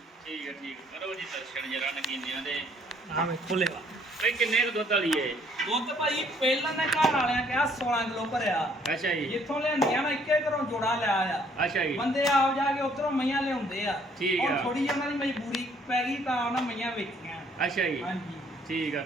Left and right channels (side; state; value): both; normal; correlation 0.63